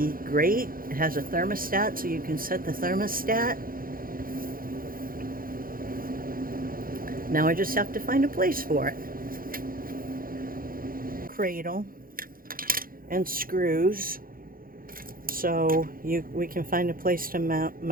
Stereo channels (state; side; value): late; left; 0.42 ms